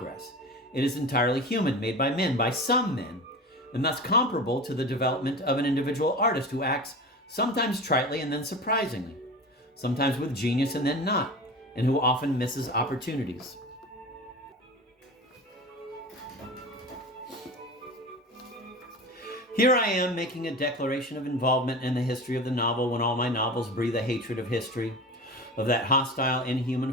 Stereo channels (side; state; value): both; normal; correlation 0.31